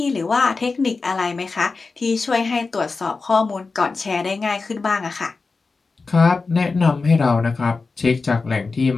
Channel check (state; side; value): quieter; right; 4.1 dB